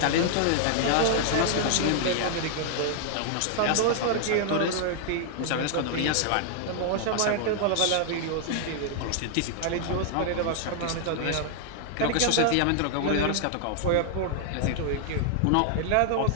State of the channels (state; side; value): different; both; correlation 0.00